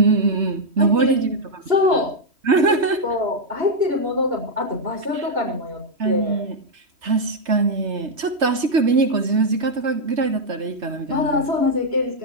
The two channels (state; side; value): late; left; 3.3 ms